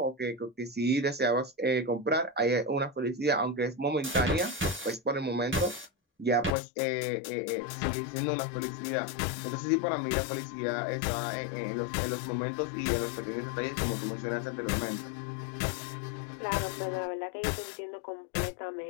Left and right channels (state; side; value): drops out; right; at 6.6 s